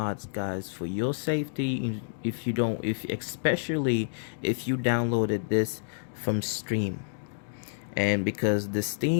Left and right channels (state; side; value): silent; right; digital silence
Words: guys, for your safety. If you don't, if especially if you downloaded this from Steam, and because the